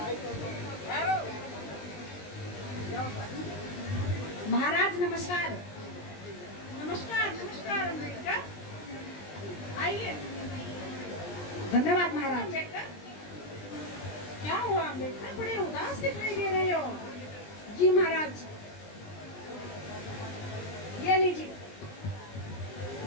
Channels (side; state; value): right; late; 20 ms